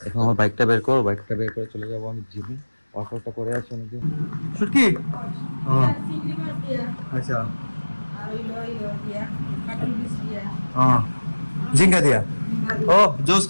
এখন আমার বাইকটা বের করো, বাইকটা বের করে চলে যাবো আমি জিমে। ওয়ার্কআউটটা করে আসি অনেকদিন। শুটকি ও আচ্ছা জিঙ্কা দিয়া ও জোস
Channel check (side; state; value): both; inverted; correlation -1.00